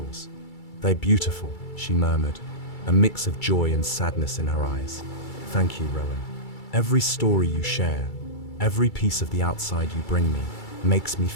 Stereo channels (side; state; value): right; late; 2.3 ms